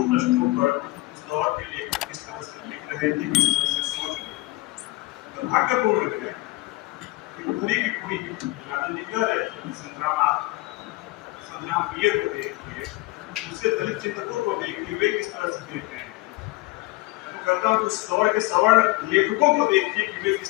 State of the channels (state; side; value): quieter; right; 20.9 dB